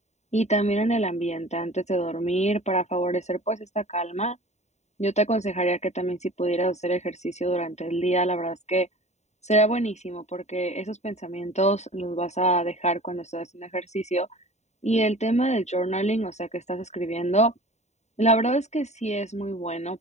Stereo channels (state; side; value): late; right; 0.32 ms